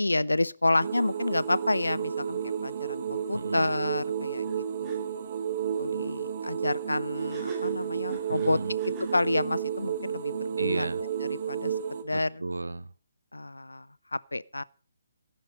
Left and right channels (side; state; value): both; inverted; correlation -0.84